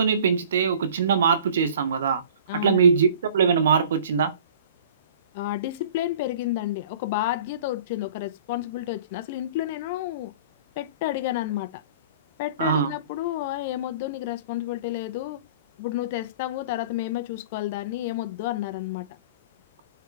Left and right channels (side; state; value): both; inverted; correlation -0.46